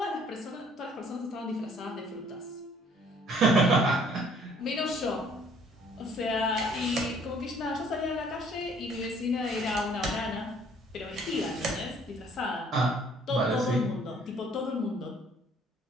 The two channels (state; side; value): normal; both; correlation 0.59